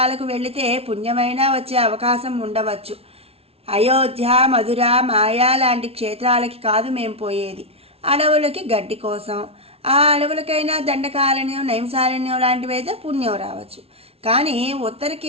వెళితే పుణ్యమైనా వచ్చే అవకాశం ఉండవచ్చు. అయోధ్య, మధుర, మాయా లాంటి క్షేత్రాలకి కాదు మేము పోయేది, అడవులకి గడ్డి కోసం. ఆ అడవులకైనా దండకారణ్యం, నైంసారణ్యం లాంటివైతే పుణ్యం రావచ్చు. కానీ ఉత్తర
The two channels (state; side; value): late; left; 0.29 ms